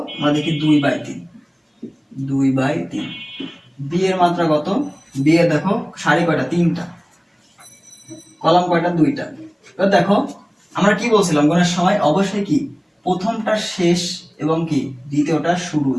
আমরা দেখি 2/3, 2/3। বি এর মাত্রা কত, বি এর দেখো সারি কয়টা, 3টা, কলাম কয়টা, 2টা। এবার দেখো আমরা কি বলছিলাম গুণের সময়, অবশ্যই কি প্রথমটা শেষ এবং কি দ্বিতীয়টা শুরু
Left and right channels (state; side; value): identical; both; correlation 1.00